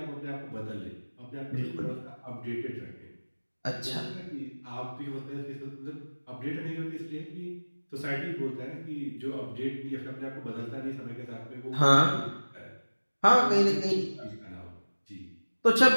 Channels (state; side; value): inverted; both; correlation -1.00